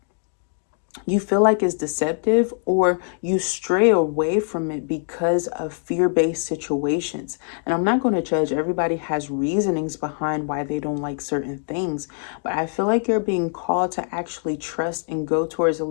feel like is deceptive, or you stray away from it because of fear-based situations. And I'm not going to judge. Everybody has reasonings behind why they don't like certain things, but I feel like you're being called to actually trust and go towards a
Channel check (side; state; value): right; silent; digital silence